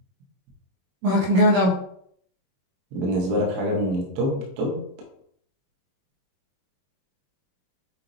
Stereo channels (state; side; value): late; left; 21 ms